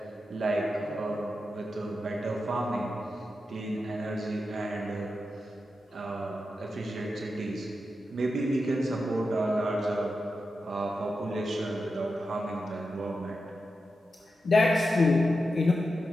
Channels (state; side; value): normal; both; correlation 0.89